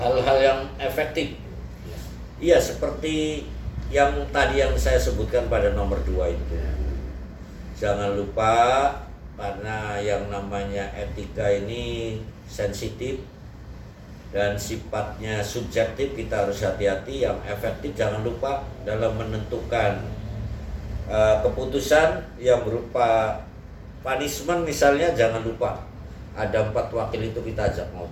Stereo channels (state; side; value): identical; both; correlation 1.00